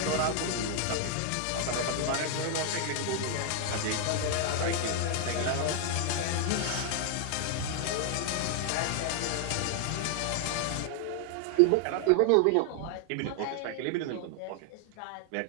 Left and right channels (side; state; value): both; different; correlation 0.00